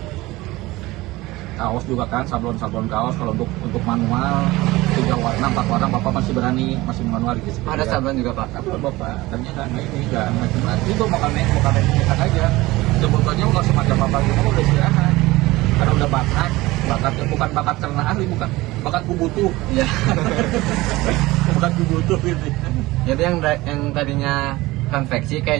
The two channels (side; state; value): left; quieter; 19.6 dB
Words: Kaos juga kan, sablon kaos kalau untuk manual 3 warna 4 warna bapak masih berani, masih manual gitu. ada sablon juga Pak. Sablon bapak, ternyata nggak macam-macam itu bukan nyetak aja. Sebetulnya kalau semacam bapak itu udah istirahat, karena udah bakatnya bukan bakat karena ahli, bukan bakat kubutuh. Iya. Bakat kubutuh gitu. Jadi yang tadinya konveksi